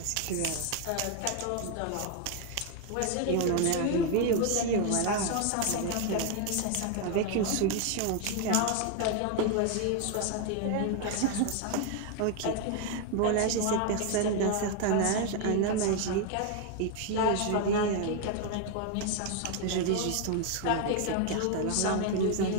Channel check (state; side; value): different; both; correlation 0.00